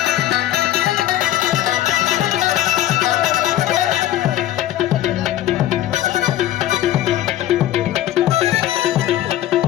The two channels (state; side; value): quieter; right; 13.4 dB